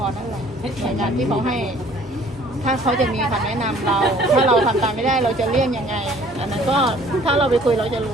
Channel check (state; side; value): normal; both; correlation 0.55